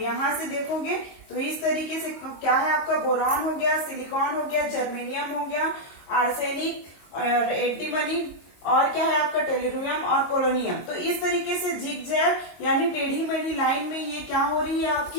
से देखोगे तो इस तरीके से क्या है? आपका बोरॉन हो गया, सिलिकॉन हो गया, जर्मेनियम हो गया, आर्सेनिक, एंटीमनी और क्या है? आपका टेलुरियम और पोलोनियम। तो इस तरीके से जिगजैग यानी टेढ़ी मेढ़ी लाइन में ये क्या हो रही है?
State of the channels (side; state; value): right; late; 22 ms